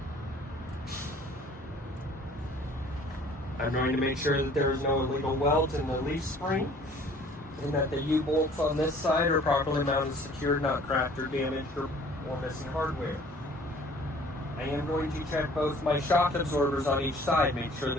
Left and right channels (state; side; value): normal; both; correlation 0.53